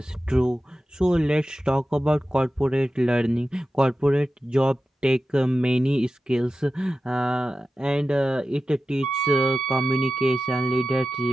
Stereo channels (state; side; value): normal; both; correlation 0.93